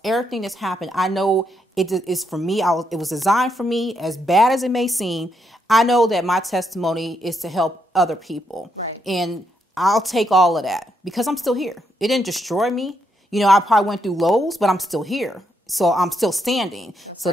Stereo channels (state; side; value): normal; both; correlation 0.78